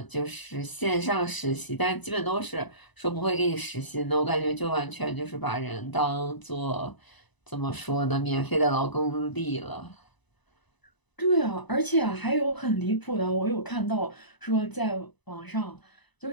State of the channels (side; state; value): right; late; 1.0 ms